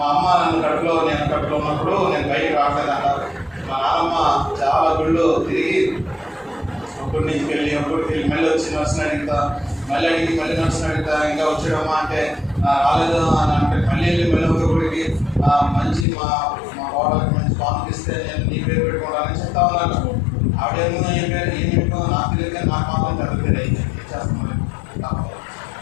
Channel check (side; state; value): right; drops out; at 16.1 s